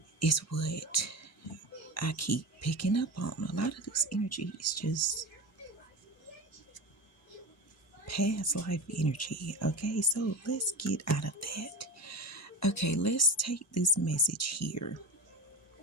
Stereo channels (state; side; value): normal; both; correlation 0.26